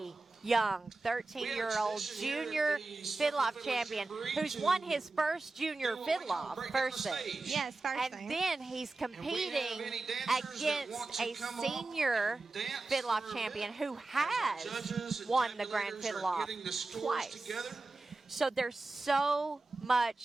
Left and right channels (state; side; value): quieter; left; 3.4 dB